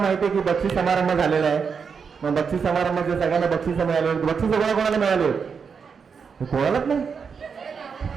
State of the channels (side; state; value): left; quieter; 6.0 dB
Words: माहिती आहे की बक्षीस समारंभ झालेला आहे. मग बक्षीस समारंभाचे सगळ्यांना बक्षीस मिळाले आहेत. बक्षीस कोणाला मिळाले आहेत? कोणालाच नाही.